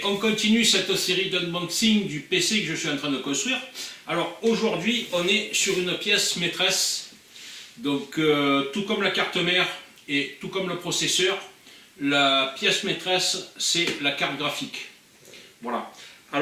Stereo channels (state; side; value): identical; both; correlation 1.00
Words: on continue cette série d'unboxing du PC que je suis en train de construire. Alors aujourd'hui, on est sur une pièce maîtresse, donc tout comme la carte mère et tout comme le processeur, la pièce maîtresse c'est la carte graphique. Voilà.